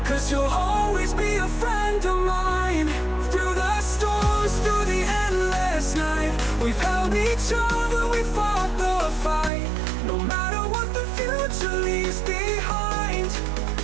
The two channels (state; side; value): drops out; left; at 9.5 s